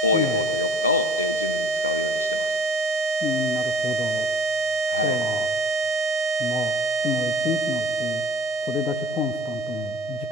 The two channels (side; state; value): both; normal; correlation 0.48